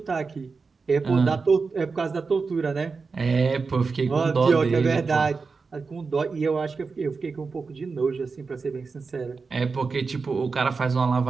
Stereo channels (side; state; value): left; quieter; 4.6 dB